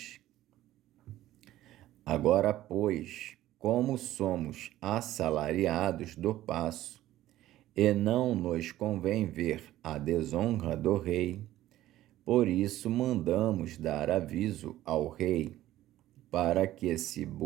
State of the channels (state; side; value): quieter; left; 14.5 dB